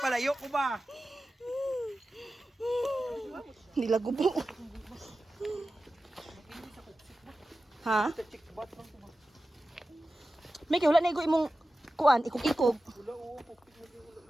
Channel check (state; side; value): normal; both; correlation 0.94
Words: ko ba? Nilagubo. Ha? May kaya wala na igo imong kuan, ikog-ikog. Wala o.